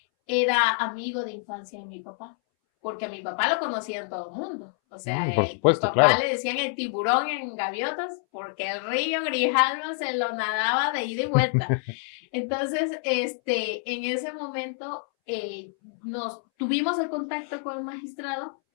era amigo de infancia de mi papá, porque a mi papá lo conocían todo el mundo. O sea, Por mi supuesto, papá claro. le decían el tiburón en Gaviotas porque el río Grijalva se lo nadaba de ida y vuelta. Entonces, en ese momento nos tuvimos el contacto con el magistrado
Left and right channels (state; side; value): silent; right; 60 dB below the other